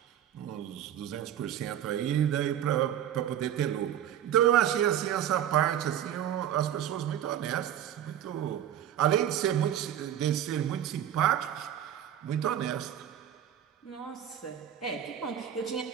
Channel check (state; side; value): quieter; left; 10.5 dB